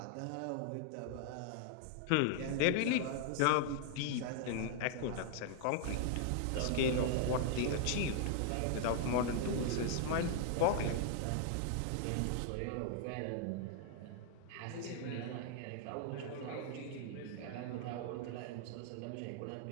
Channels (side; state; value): both; different; correlation 0.00